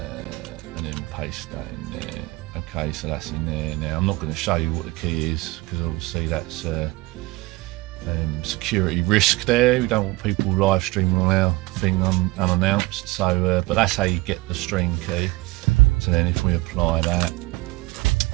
then paste that in there. Okay, so that's in there. Now I'm not going to show you what the key is because obviously that's security risk there. We don't want people live streaming on our thing unannounced, so but that's how you get the stream key. So then if we apply that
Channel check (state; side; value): quieter; left; 21.4 dB